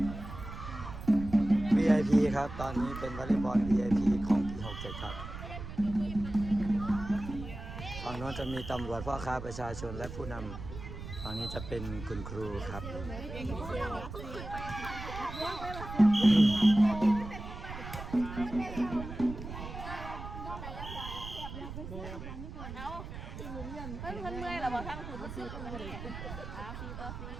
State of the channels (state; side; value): noise; right; rumble, 9 dB below the sound